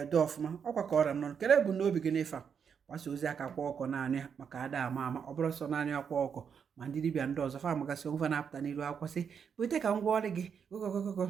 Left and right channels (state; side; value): quieter; left; 7.0 dB